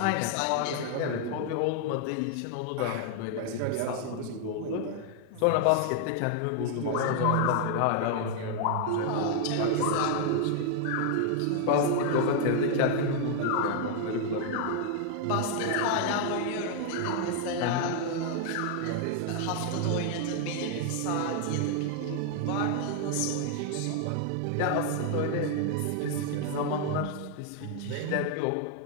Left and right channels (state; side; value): different; both; correlation 0.00